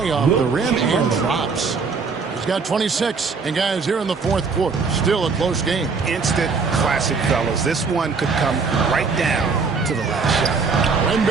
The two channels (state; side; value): quieter; left; 4.9 dB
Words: off the rim and drops. He's got 26. And guys, here in the fourth quarter, still a close game. Instant classic, fellas. This one could come right down to the last shot.